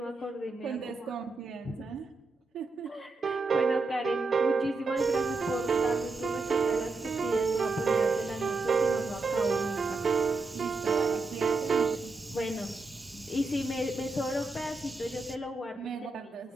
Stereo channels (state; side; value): quieter; left; 3.6 dB